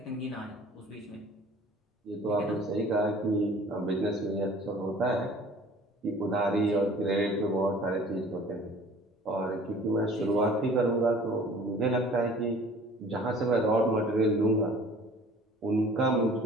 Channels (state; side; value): normal; both; correlation 0.49